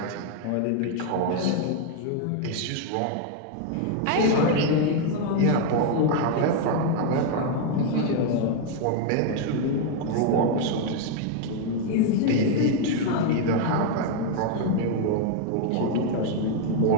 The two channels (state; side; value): different; both; correlation 0.01